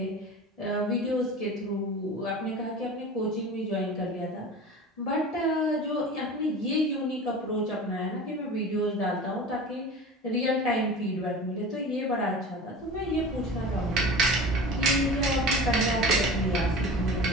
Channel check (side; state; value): both; normal; correlation 0.35